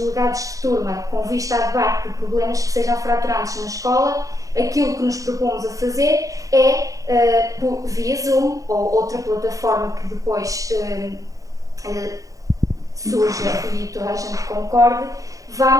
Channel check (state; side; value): late; left; 0.16 ms